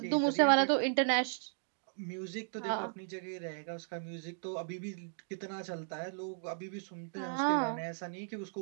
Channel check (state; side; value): silent; left; digital silence